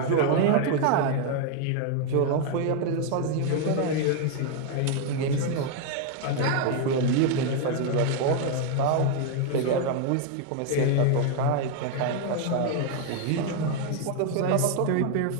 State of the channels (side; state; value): both; different; correlation 0.01